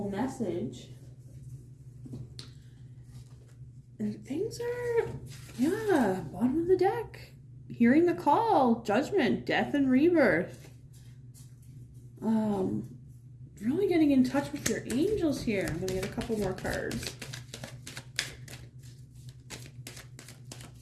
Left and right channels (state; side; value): identical; both; correlation 1.00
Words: message. And things are, bottom of the deck. Hearing the call, judgment, death and rebirth. Really getting in touch with your angels here. I'm going to get a couple more cards.